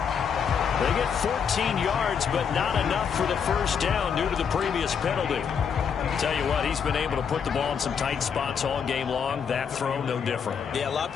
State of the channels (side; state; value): right; quieter; 7.0 dB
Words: They get 14 yards, but not enough for the 1st down due to the previous penalty. Tell you what, he's been able to put the ball in some tight spots all game long. That throw, no different. Yeah, a lot of